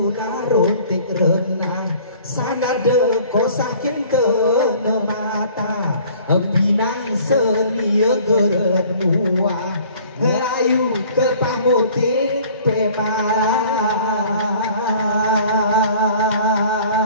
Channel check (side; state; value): both; inverted; correlation -0.51